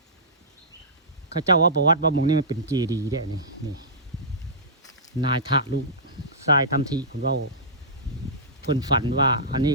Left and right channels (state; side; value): normal; both; correlation -0.18